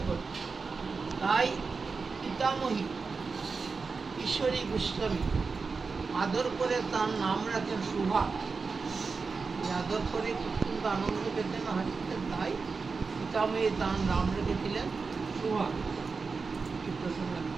করত। তাই পিতামহী ঈশ্বরী গোস্বামী আদর করে তার নাম রাখেন শুভা। আদর করে অত্যন্ত আনন্দ পেতেন, হাসতেন। তাই পিতামহী তার নাম রেখেছিলেন শুভা।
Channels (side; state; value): left; quieter; 4.6 dB